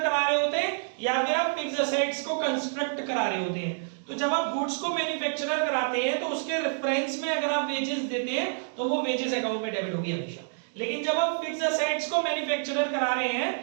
करा रहे होते हैं या फिर आप फिक्स्ड असेट्स को कंस्ट्रक्ट करा रहे होते हैं। तो जब आप गुड्स को मैन्युफैक्चरर कराते हैं तो उसके रेफरेंस में अगर आप वेजेस देते हैं तो वो वेजेस अकाउंट में डेबिट होगी हमेशा। लेकिन जब आप फिक्स्ड असेट्स को मैन्युफैक्चरर करा रहे हैं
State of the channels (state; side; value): silent; left; digital silence